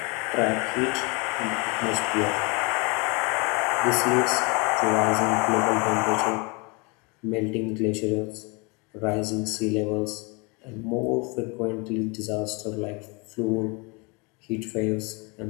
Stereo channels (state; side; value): quieter; right; 29.6 dB